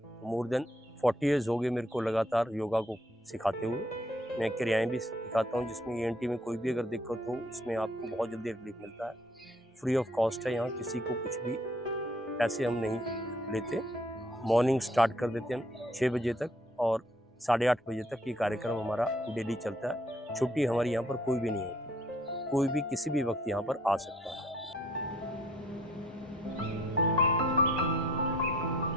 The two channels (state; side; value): normal; both; correlation 0.63